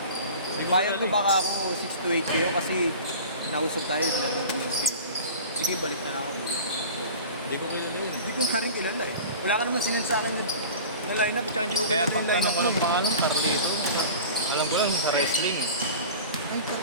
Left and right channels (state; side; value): inverted; both; correlation -0.37